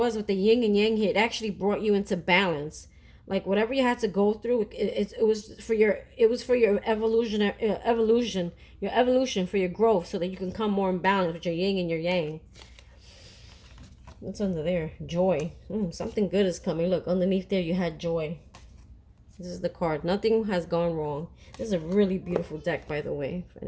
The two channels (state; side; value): identical; both; correlation 1.00